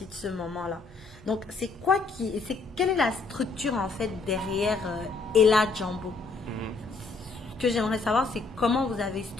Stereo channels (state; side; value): quieter; right; 4.1 dB